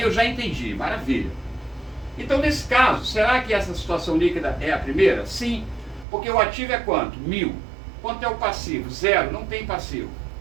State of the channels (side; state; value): left; drops out; at 6.1 s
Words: eu já entendi, maravilha. Então, nesse caso, será que essa situação líquida é a primeira? Sim, porque o ativo é quanto? 1.000. Quanto é o passivo? 0, não tem passivo.